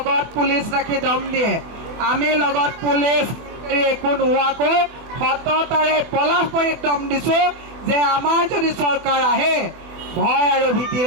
পুলিচ ৰাখি দম দিয়ে আমি লগত পুলিচ একো নোহোৱাকৈ সততাৰে পলাশবাৰীত দম দিছো যে আমাৰ যদি চৰকাৰ আহে ভয় আৰু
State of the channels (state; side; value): late; left; 24 ms